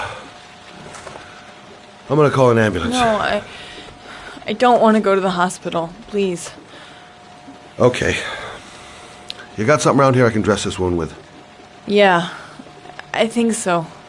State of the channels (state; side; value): identical; both; correlation 1.00